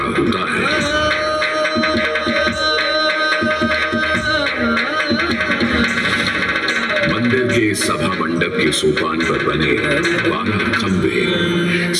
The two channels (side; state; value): both; identical; correlation 1.00